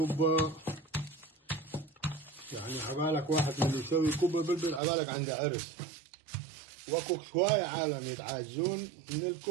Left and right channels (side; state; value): left; drops out; at 4.8 s